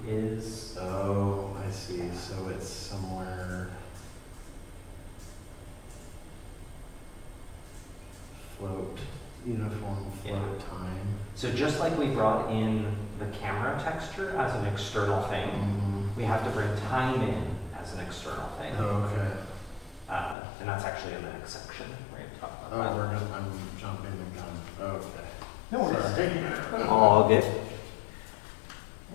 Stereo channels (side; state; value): right; drops out; at 20.4 s